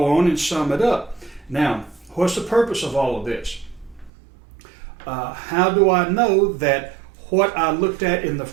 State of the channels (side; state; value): left; drops out; at 4.1 s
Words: on and sum it up. Now, what's the purpose of all of this? How do I know that what I looked at in the